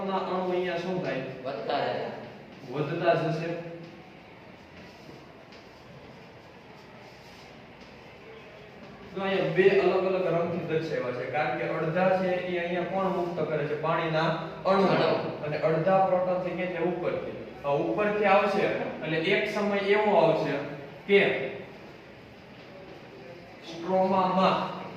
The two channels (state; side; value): identical; both; correlation 1.00